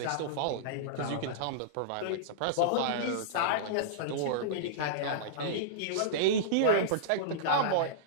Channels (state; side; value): different; both; correlation -0.03